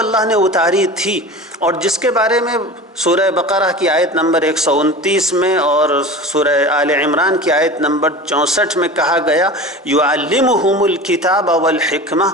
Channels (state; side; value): normal; both; correlation 0.34